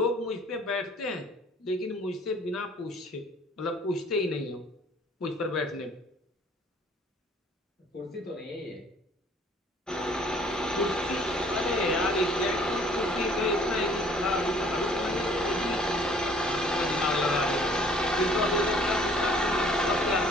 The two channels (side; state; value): both; normal; correlation 0.56